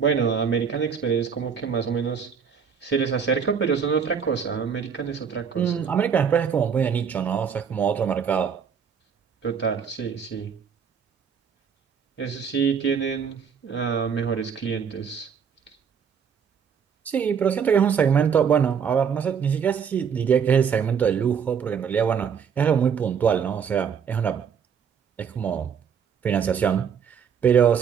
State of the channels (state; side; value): quieter; left; 7.1 dB